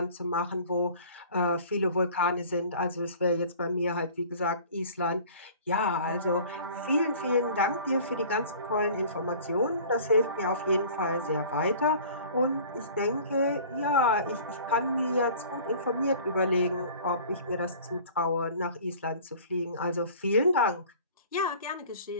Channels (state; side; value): inverted; both; correlation -0.46